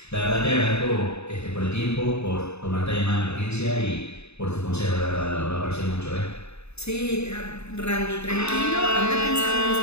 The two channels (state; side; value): late; right; 0.80 ms